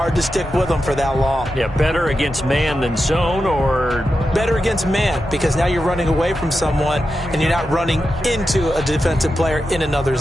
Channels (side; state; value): both; normal; correlation 0.90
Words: to stick with them for that long. Yeah, better against man than zone, or? Better against man, because now you're running away from someone and you're not running into a defensive player in another